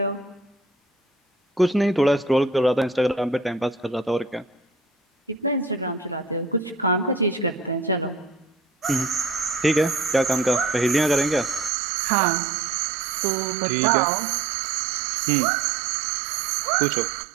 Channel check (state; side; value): drops out; left; at 11.7 s